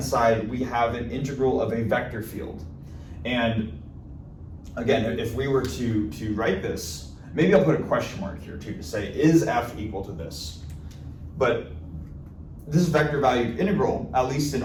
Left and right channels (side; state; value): both; identical; correlation 1.00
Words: side, we have an integral of a vector field. And again, if we were to write this, maybe I'll put a question mark here too to say, is f equal to this? But this vector valued integral, at least in